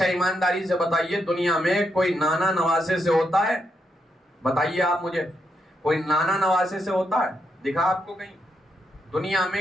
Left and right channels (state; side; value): normal; both; correlation 0.81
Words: ایمانداری سے بتائیے دنیا میں کوئی نانا نواسے سے ہوتا ہے؟ بتائیے آپ مجھے، کوئی نانا نواسے سے ہوتا ہے؟ دکھا آپ کو کہیں؟ دنیا میں